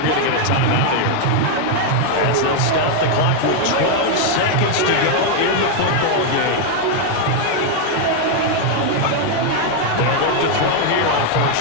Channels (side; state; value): both; different; correlation 0.01